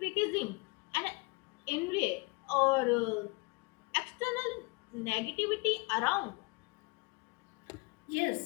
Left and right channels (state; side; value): quieter; right; 28.1 dB